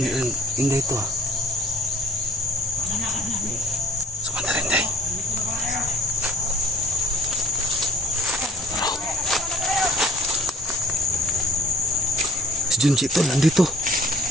inday ito ha. Sumanda rin day. Si Junji ito, nandito.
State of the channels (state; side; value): normal; both; correlation 0.52